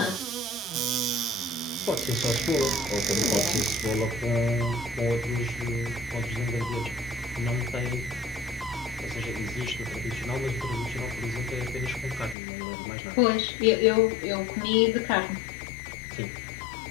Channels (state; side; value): drops out; right; at 12.4 s